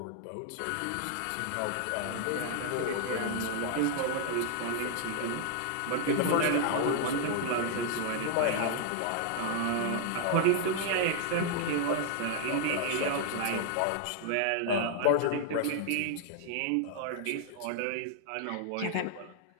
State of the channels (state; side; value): different; both; correlation 0.00